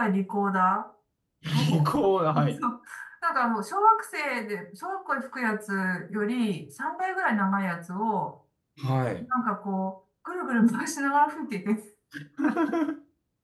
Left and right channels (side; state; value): both; identical; correlation 1.00